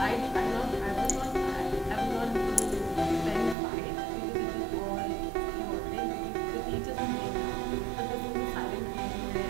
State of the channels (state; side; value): drops out; left; at 3.6 s